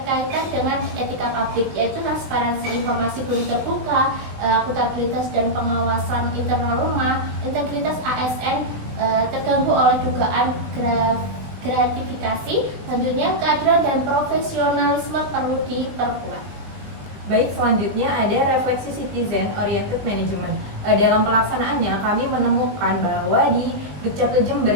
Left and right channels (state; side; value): late; left; 20 ms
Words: dengan etika publik, yaitu transparansi informasi belum terbuka, akuntabilitas dan pengawasan internal rumah, integritas ASN terganggu oleh dugaan gratifikasi. Selanjutnya keadilan dan profesionalisme perlu diperkuat. Baik, selanjutnya ada refleksi citizen oriented management. Dalam pelaksanaannya kami menemukan bahwa di Dukcapil Jember